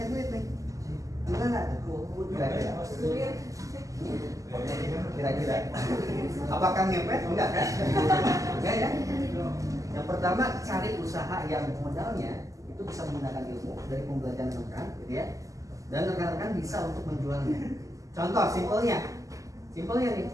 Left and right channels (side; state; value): left; late; 0.16 ms